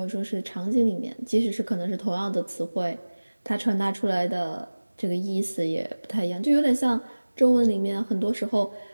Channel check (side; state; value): both; inverted; correlation -1.00